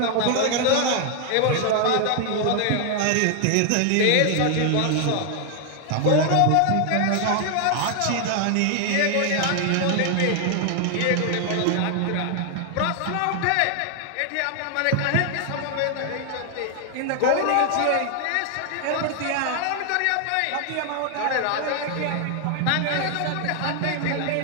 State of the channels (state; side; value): different; both; correlation 0.00